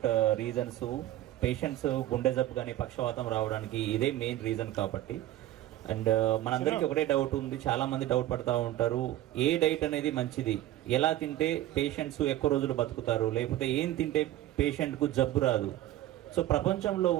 రీజన్స్. పేషెంట్స్ గుండె జబ్బు కానీ పక్షవాతం రావడానికి ఇదే మెయిన్ రీజన్ కాబట్టి. అండ్ మనందరికీ ఒకటే డౌట్ ఉంది, చాలా మంది డౌట్ పడతా ఉంటారు, ఏ డైట్ అనేది మంచిది, ఎలా తింటే పేషెంట్స్ ఎక్కువ రోజులు బతుకుతారు, లేకపోతే ఏం తింటే పేషెంట్కు జబ్బు రాదు. సో ప్రపంచంలో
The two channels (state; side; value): quieter; left; 14.2 dB